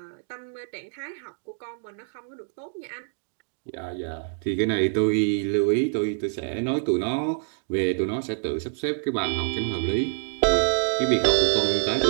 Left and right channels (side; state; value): left; silent; digital silence